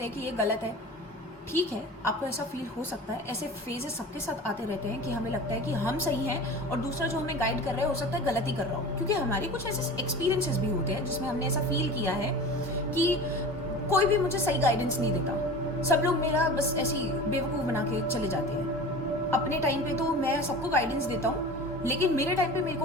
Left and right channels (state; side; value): normal; both; correlation 0.35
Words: हैं कि ये गलत है। ठीक है, आपको ऐसा फील हो सकता है, ऐसे फेजेस सबके साथ आते रहते हैं कि हमें लगता है कि हम सही हैं और दूसरा जो हमें गाइड कर रहा है हो सकता है गलत ही कर रहा हो, क्योंकि हमारे कुछ ऐसे एक्सपीरियंसेस भी होते हैं जिसमें हमने ऐसा फील किया है कि कोई भी मुझे सही गाइडेंस नहीं देता, सब लोग मेरा बस ऐसी बेवकूफ़ बना के चले जाते हैं। अपने टाइम पे तो मैं सबको गाइडेंस देता हूँ, लेकिन मेरे टाइम पे मेरे